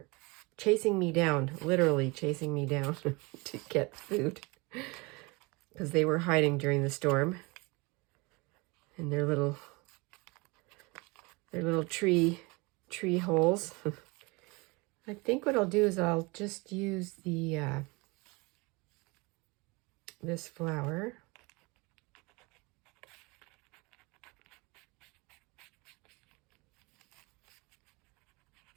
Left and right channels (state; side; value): quieter; left; 26.3 dB